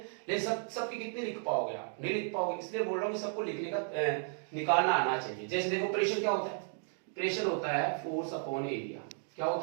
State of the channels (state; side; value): silent; left; 55 dB below the other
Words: लेकिन सबकी कितने लिख पाओगे आप? नहीं लिख पाओगे, इसलिए बोल रहा हूँ कि सबको लिखने का निकालना आना चाहिए। जैसे देखो प्रेशर क्या होता है? प्रेशर होता है फोर्स अपॉन एरिया। क्या